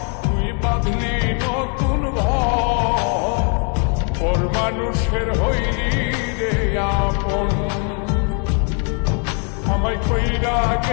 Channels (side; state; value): right; quieter; 39.8 dB